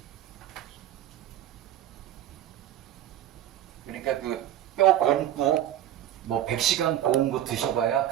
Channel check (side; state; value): left; quieter; 12.0 dB